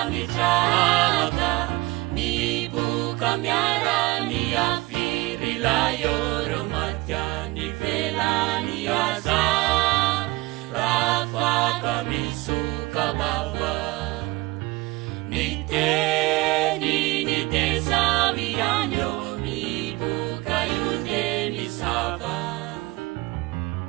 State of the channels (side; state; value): left; quieter; 21.7 dB